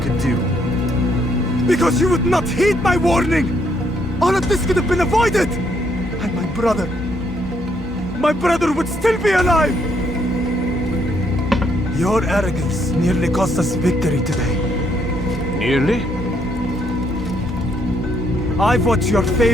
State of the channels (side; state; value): both; normal; correlation 0.72